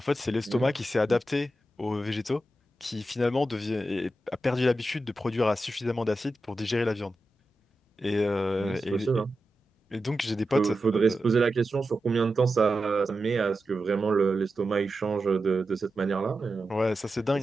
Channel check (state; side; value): normal; both; correlation 0.91